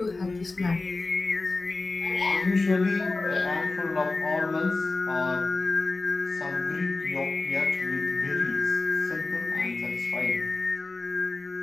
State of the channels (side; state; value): right; quieter; 3.5 dB